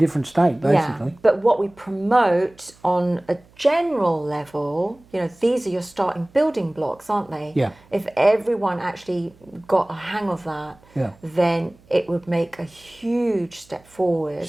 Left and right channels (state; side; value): noise; right; hum, 29 dB below the sound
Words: state, basically. Yeah, but what we promote on a general level, you know, these are your starting building blocks, aren't they? Yeah. If everyone actually got a hang of that, then it would make a huge step forward.